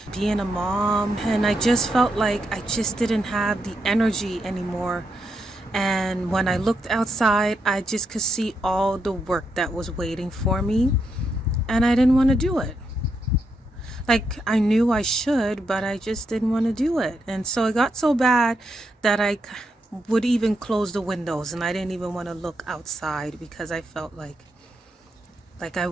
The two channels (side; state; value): both; normal; correlation 0.81